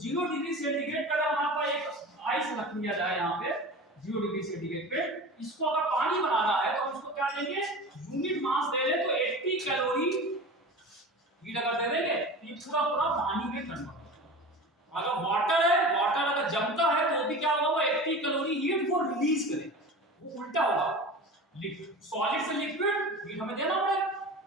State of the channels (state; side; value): normal; both; correlation 0.33